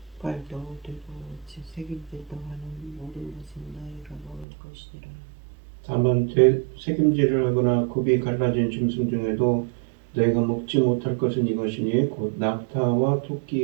되고 새김질도 하는 모든 것은 너희가 먹을 것이니라. 다만 새김질을 하거나 굽이 갈라진 짐승 중에도 너희가 먹지 못할 것은 이것이니 곧 낙타와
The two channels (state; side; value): drops out; left; at 4.5 s